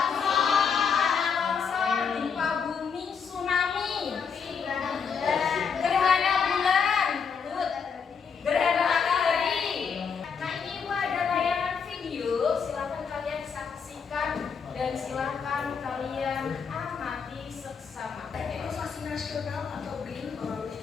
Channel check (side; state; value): right; quieter; 6.3 dB